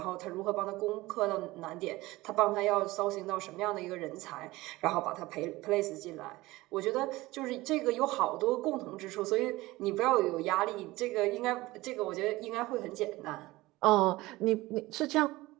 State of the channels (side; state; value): left; quieter; 19.5 dB